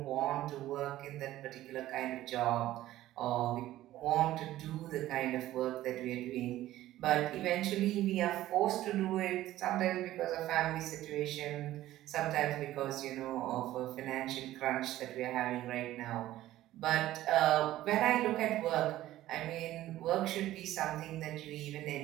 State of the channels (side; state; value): left; quieter; 14.7 dB